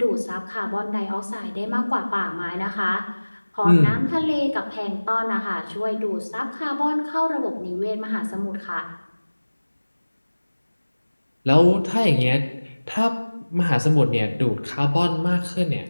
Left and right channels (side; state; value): both; inverted; correlation -1.00